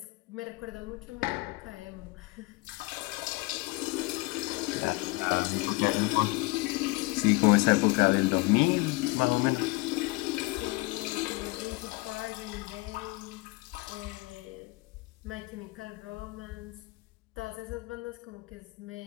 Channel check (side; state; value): right; quieter; 23.9 dB